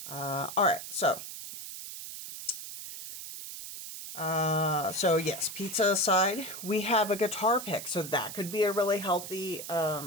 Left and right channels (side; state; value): right; noise; hiss, 10 dB below the sound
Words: All right, so yes, pizza aside, we have a guitar pick, so that could be a really healthy